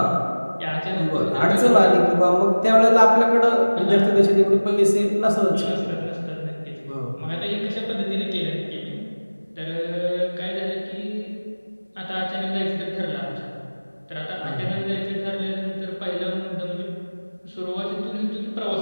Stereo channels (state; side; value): inverted; both; correlation -1.00